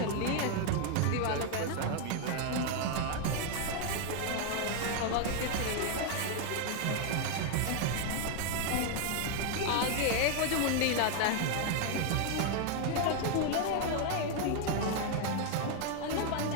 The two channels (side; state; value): both; different; correlation 0.01